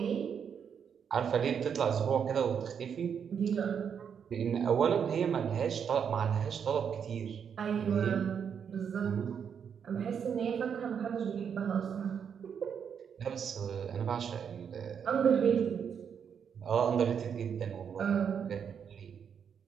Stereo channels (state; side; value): quieter; left; 7.5 dB